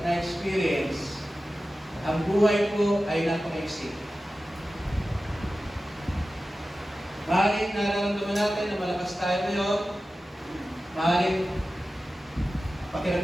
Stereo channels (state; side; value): normal; both; correlation 0.94